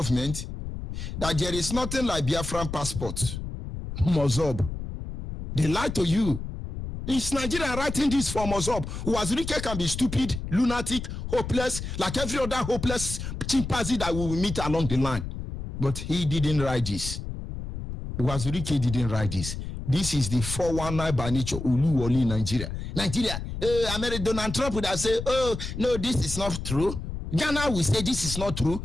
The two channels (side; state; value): left; noise; rumble, 7 dB below the sound